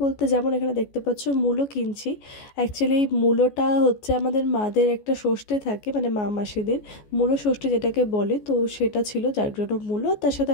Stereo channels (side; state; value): right; late; 14 ms